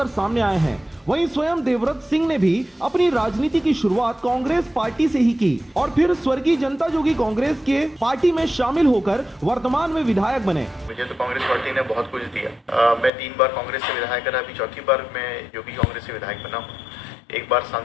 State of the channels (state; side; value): drops out; right; at 13.1 s